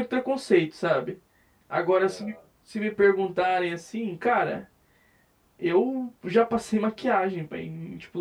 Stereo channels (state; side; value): identical; both; correlation 1.00